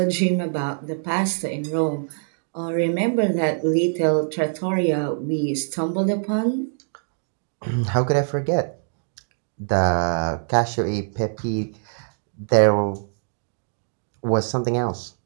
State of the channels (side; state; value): left; silent; digital silence